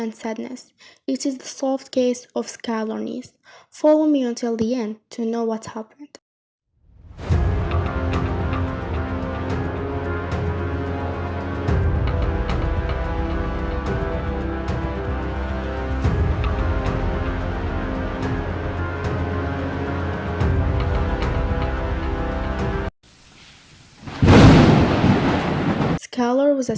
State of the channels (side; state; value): both; identical; correlation 1.00